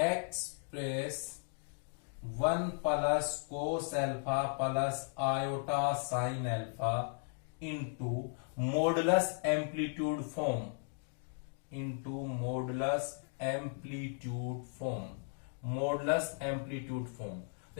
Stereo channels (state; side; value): silent; right; 54 dB below the other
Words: 1 plus cos alpha plus iota sine alpha into modulus amplitude form, into modulus amplitude form. Modulus amplitude form,